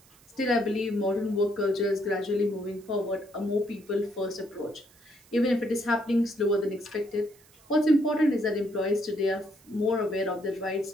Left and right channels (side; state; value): right; noise; hiss, 28 dB below the sound